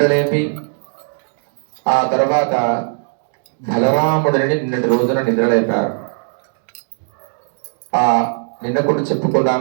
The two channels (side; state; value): left; silent; digital silence